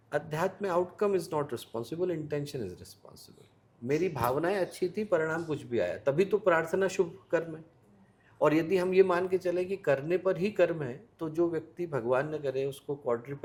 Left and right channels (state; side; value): identical; both; correlation 1.00